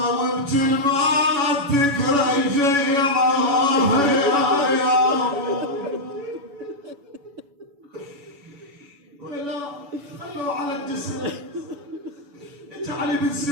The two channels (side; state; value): left; late; 7.0 ms